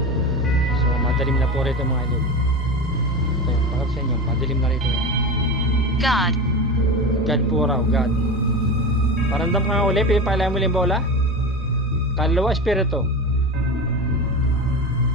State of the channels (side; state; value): both; normal; correlation 0.25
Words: So Madilim na po rito mga idol. Ito yung pakap sa inyo. Madilim na rito. God. God po raw. God. Paramdam ka nga uli. Pinipalayan mo yung bola. Kaluluwa, espiritu.